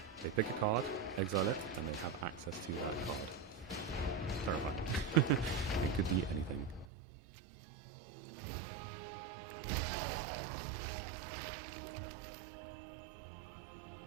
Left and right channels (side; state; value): left; drops out; at 6.9 s